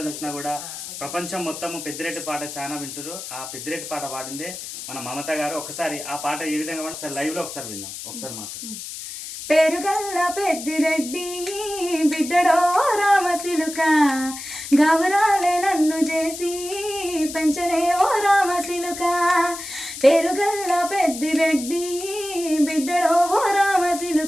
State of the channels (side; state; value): left; noise; hiss, 10 dB below the sound